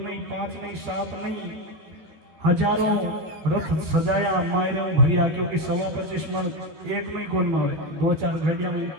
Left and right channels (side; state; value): left; late; 14 ms